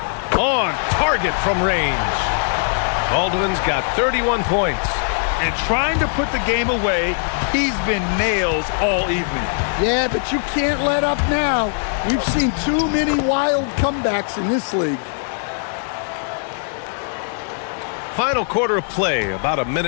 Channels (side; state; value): right; silent; 66 dB below the other